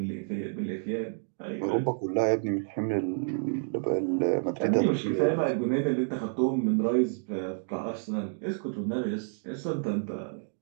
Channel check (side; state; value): left; silent; digital silence